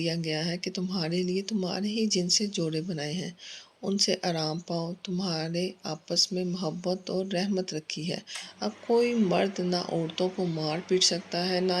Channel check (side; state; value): both; identical; correlation 1.00